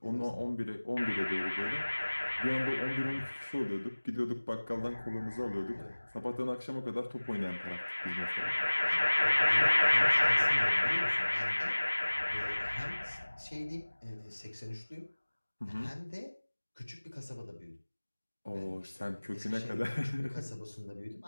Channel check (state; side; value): inverted; both; correlation -1.00